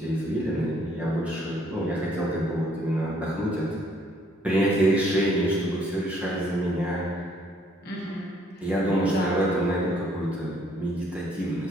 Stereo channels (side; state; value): both; normal; correlation 0.65